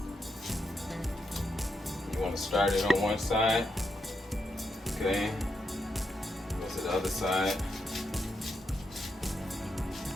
You want to start it on one side. Okay. Go to the other side.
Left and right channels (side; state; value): both; normal; correlation 0.83